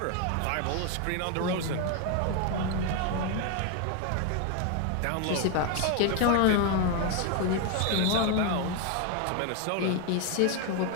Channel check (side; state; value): both; different; correlation 0.01